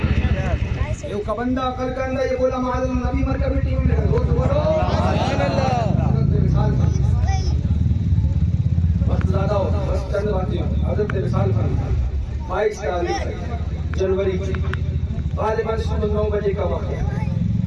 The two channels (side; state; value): both; identical; correlation 1.00